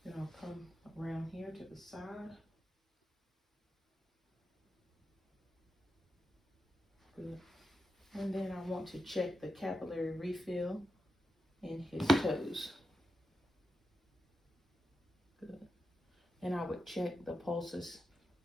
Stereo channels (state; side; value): normal; both; correlation 0.89